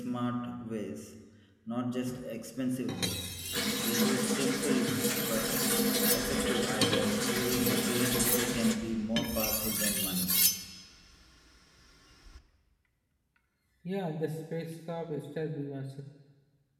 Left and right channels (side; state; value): both; identical; correlation 1.00